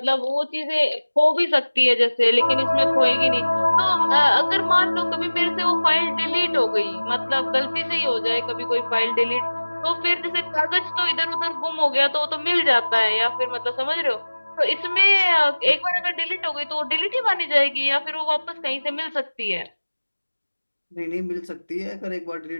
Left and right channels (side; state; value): both; inverted; correlation -1.00